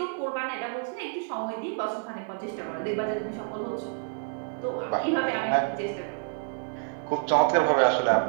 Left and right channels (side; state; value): left; silent; 59 dB below the other